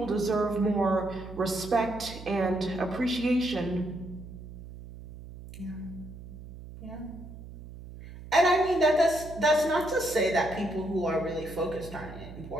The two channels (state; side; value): noise; right; hum, 14 dB below the sound